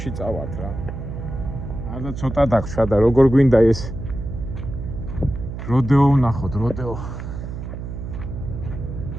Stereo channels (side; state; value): right; noise; hum, 8 dB below the sound